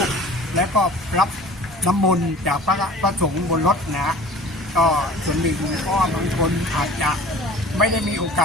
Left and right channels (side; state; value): both; normal; correlation 0.44